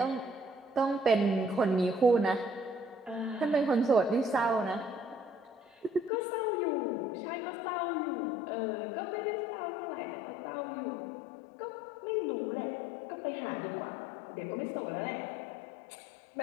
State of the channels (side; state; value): right; drops out; at 6.1 s